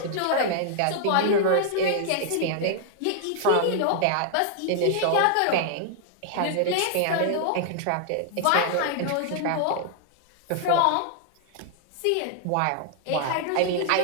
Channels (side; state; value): both; different; correlation 0.00